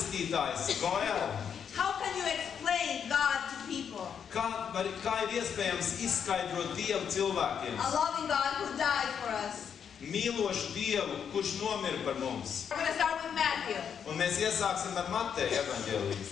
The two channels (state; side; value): quieter; right; 7.6 dB